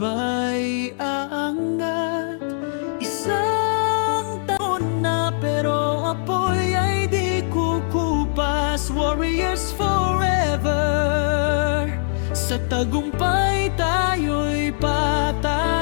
aangat. Isang taon na pero apoy ay di kukupas. Warriors forever, sa tagumpay tayo'y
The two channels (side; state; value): right; silent; digital silence